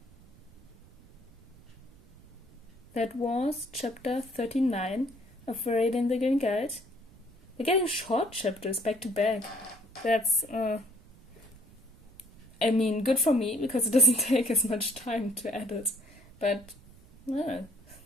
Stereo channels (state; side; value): noise; right; rumble, 24 dB below the sound